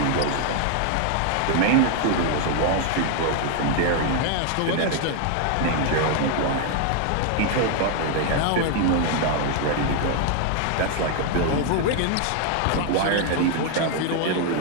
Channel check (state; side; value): different; both; correlation 0.00